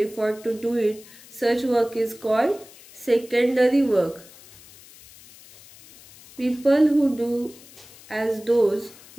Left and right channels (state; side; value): noise; left; hiss, 22 dB below the sound